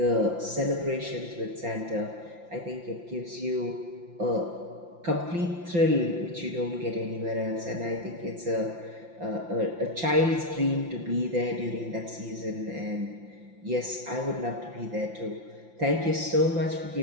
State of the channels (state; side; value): late; left; 5.8 ms